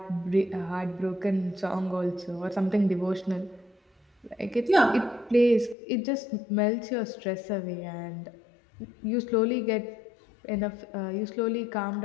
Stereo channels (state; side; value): drops out; right; at 5.8 s